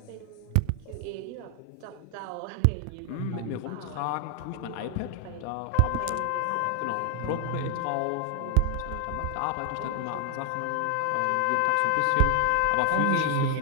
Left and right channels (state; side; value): different; both; correlation 0.00